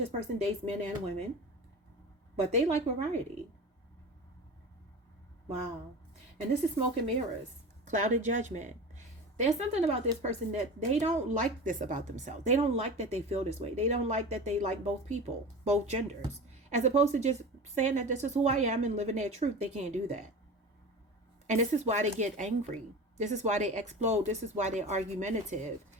person dates men and women, but they like variety. Wow. And this is smoke and mirrors, clouded judgment. There's something about this person that they don't like this about themselves. They don't like that they feel this way. They don't like that they like both people, both genders. As opposed to just saying that this is who I am and living their truth. They can't do that. And this is why they get angry. This is why they explode. This is why they're argumentative.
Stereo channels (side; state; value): both; normal; correlation 0.31